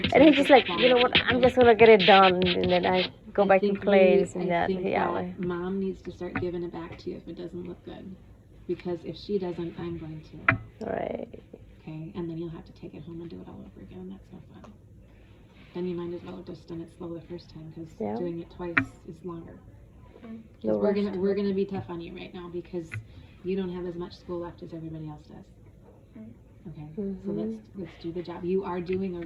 And he just like, you know what, I'm just gonna get it done, and then I go back to play this and that. I think Yeah. that Mom needs to start giving it back to you if it doesn't look good. Because if she doesn't, I'm going to. Right. Okay, and then you'll have to take it home and do it all over again, and that's no fun. Then you might as well have just done it slow the first time, because doing it twice is longer. No We're rush gonna we're gonna be tough on you right now because you don't have as much school left as everybody else does. Okay, so let's do the job. You are doing a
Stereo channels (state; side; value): identical; both; correlation 1.00